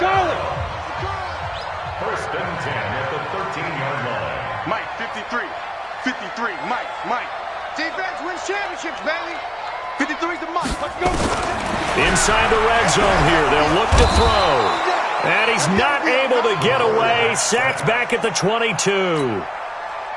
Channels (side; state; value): both; identical; correlation 1.00